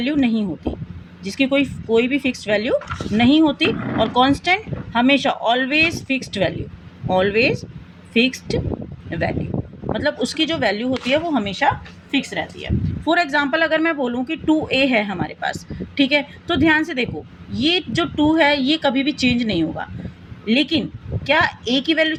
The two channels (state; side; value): identical; both; correlation 1.00